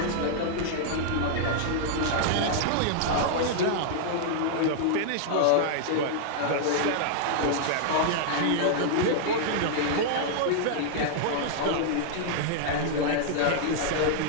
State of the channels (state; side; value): different; both; correlation -0.01